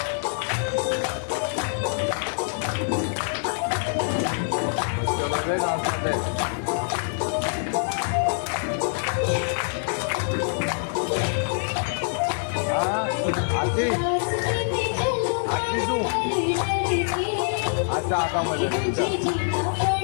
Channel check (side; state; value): right; silent; digital silence